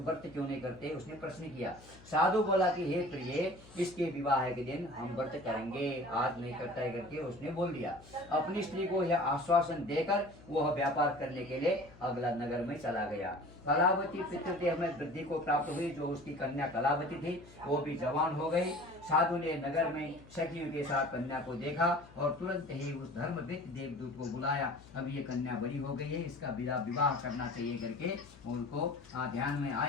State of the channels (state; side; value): noise; left; hum, 22 dB below the sound